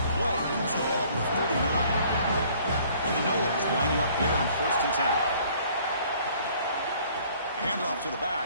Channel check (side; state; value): both; inverted; correlation -0.57